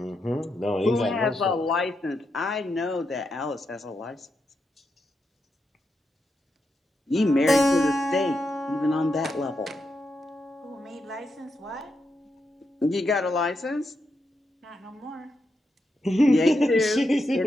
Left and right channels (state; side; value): normal; both; correlation 0.84